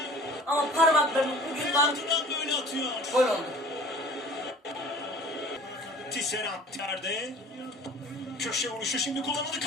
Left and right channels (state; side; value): normal; both; correlation 0.45